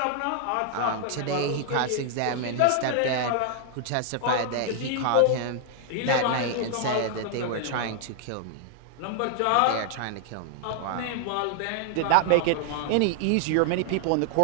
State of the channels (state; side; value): different; both; correlation 0.00